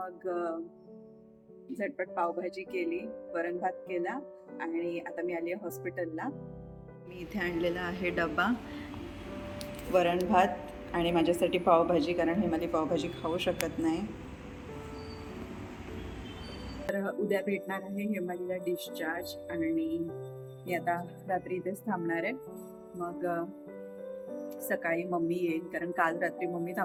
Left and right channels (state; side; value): identical; both; correlation 1.00